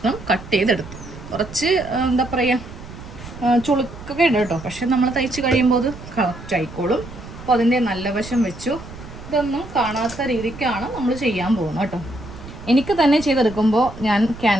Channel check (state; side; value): noise; right; rumble, 14 dB below the sound